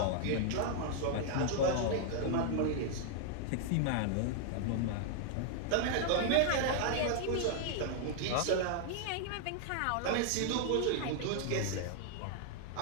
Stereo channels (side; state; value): both; different; correlation 0.00